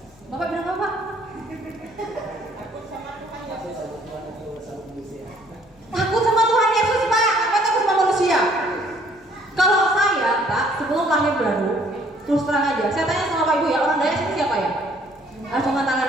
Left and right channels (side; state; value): both; normal; correlation 0.61